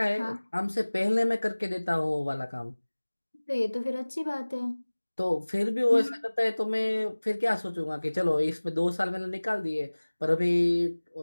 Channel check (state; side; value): inverted; both; correlation -1.00